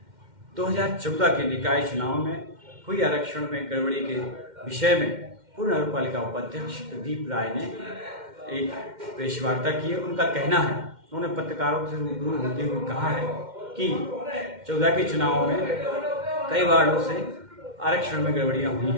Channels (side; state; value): left; late; 2.1 ms